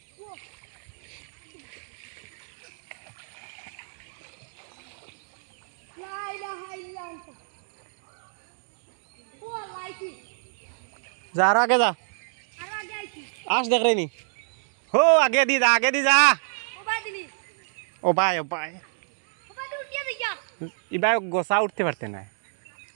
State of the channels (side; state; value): left; silent; digital silence